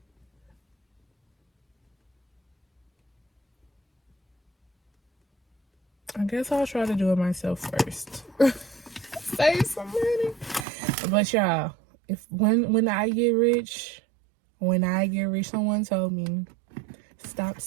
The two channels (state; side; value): drops out; left; at 10.7 s